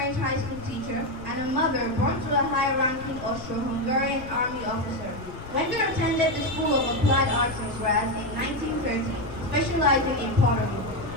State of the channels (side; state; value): left; noise; rumble, 14 dB below the sound